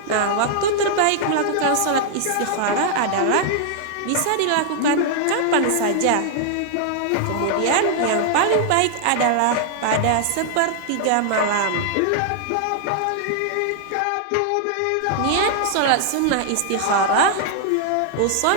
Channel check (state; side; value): different; both; correlation 0.00